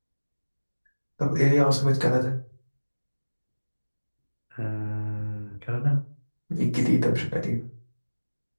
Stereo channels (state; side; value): inverted; both; correlation -1.00